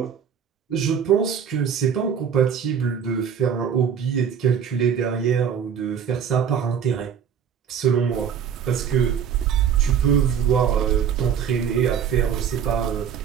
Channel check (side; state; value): left; quieter; 7.9 dB